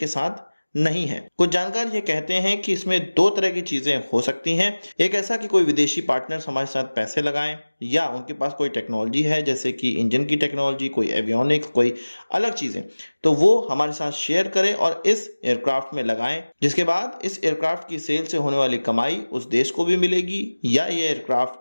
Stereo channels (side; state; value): both; inverted; correlation -1.00